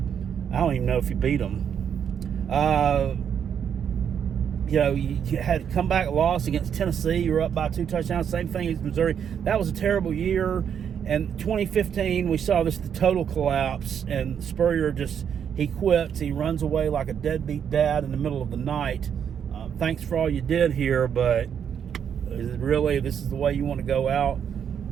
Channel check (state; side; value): quieter; left; 8.1 dB